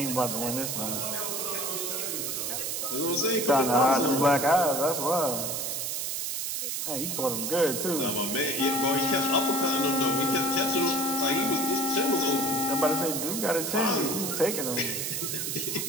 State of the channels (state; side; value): noise; right; hiss, 2 dB below the sound